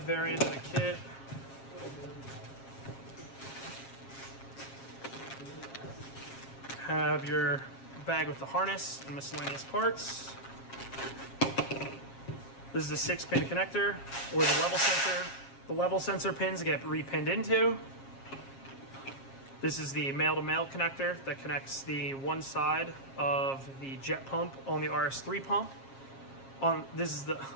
variant of the kit. Have your bag with the harness and miscellaneous parts. This is the 6-pin connector where the level sensor pins get repinned into. This is the male-to-male connector that connects the one side of the jet pump on the RS3 pump. On the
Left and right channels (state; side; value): late; right; 7.4 ms